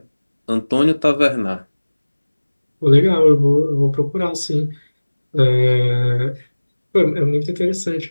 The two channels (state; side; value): inverted; both; correlation -1.00